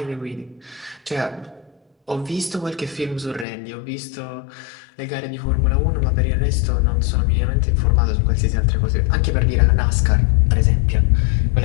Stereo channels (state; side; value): drops out; right; at 3.5 s